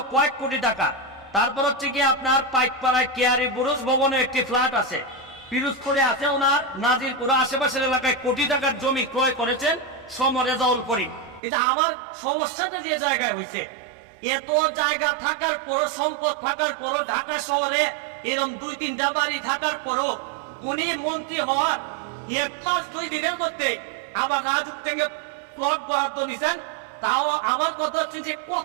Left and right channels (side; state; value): left; drops out; at 11.4 s